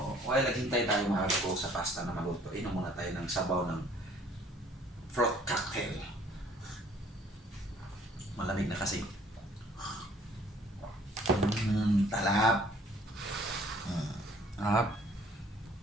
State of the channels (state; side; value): normal; both; correlation 0.57